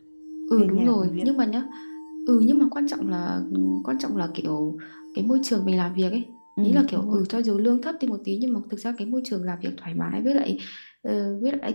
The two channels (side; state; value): both; inverted; correlation -1.00